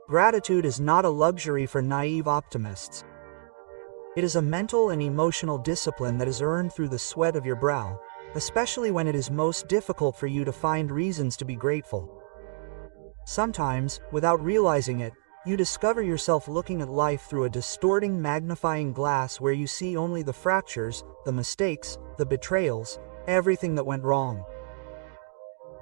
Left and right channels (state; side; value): silent; left; digital silence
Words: Gratitude is not a luxury for naive optimists. It is a mental and emotional discipline that is earned through the sweat of your brow, especially when it is most difficult for you to find reasons to be grateful. Sometimes, without realizing it, you discover yourself looking at life through a distorting magnifying glass where you see only the fractures, the mistakes, the betrayals, everything that went wrong.